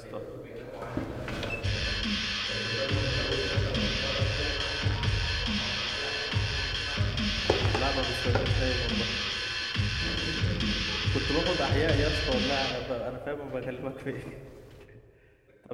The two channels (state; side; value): identical; both; correlation 1.00